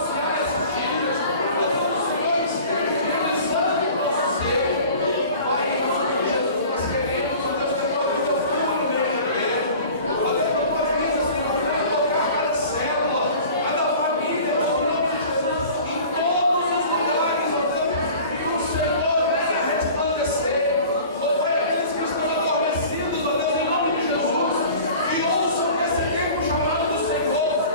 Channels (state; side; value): inverted; both; correlation -0.43